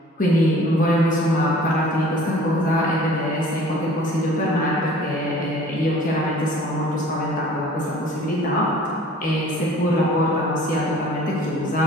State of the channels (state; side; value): normal; both; correlation 0.49